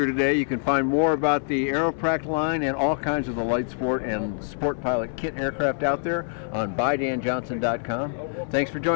today. You can find more about the Aeroprakt line and all kinds of the light sport and sport pilot kit aircraft out there on buydanjohnson.com. Thanks for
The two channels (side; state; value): right; silent; 62 dB below the other